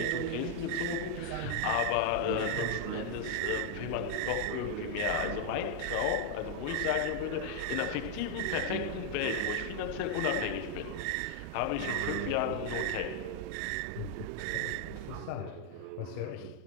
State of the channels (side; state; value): both; different; correlation 0.00